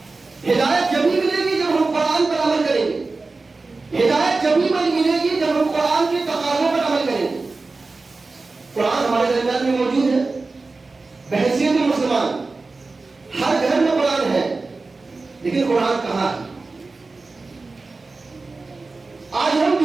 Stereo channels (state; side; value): quieter; left; 3.7 dB